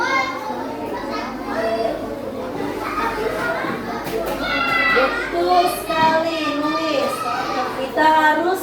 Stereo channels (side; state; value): both; identical; correlation 1.00